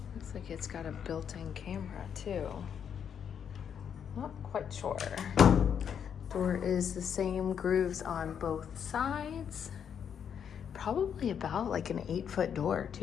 Looks like it's got a built-in camera too. Not quite sure. Door is the same grooves on both sides. Probably about like an 8-foot door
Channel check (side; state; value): right; quieter; 8.0 dB